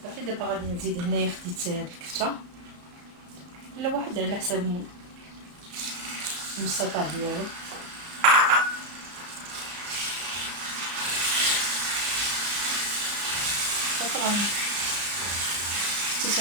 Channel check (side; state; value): left; late; 34 ms